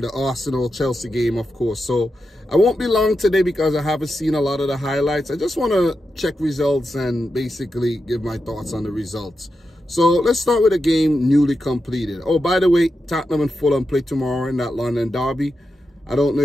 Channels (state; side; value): normal; both; correlation 0.88